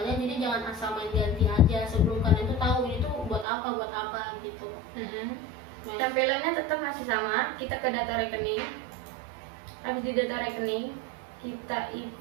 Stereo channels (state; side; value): drops out; left; at 3.5 s